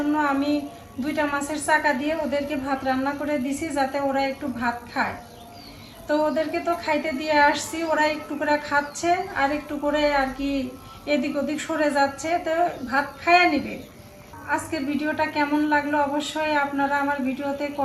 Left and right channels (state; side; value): identical; both; correlation 1.00